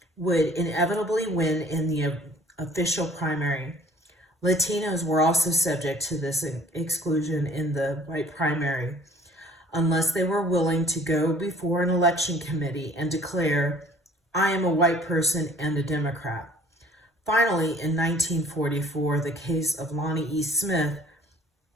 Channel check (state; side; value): normal; both; correlation 0.53